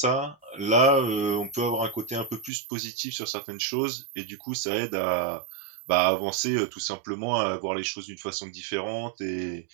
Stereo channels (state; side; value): drops out; left; at 2.5 s